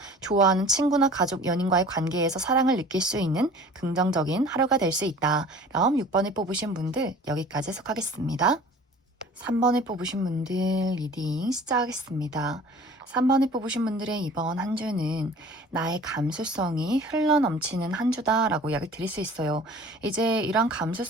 좋아하는 친구나 가족, 연인과의 관계에서 사랑을 느낄 수 있는 긍정적인 하루가 될 수 있다. 그럼 6번을 뽑으신 분들 여기까지 해석하겠습니다. 3번을 뽑으신 분들 리딩 시작하겠습니다. 3번을 뽑으신 분들의 이번 한 주는 나의 감수성이 흘러넘치는 한 주다라고 이야기를 드릴 수 있어요. 이제 이런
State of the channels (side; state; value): both; normal; correlation 0.46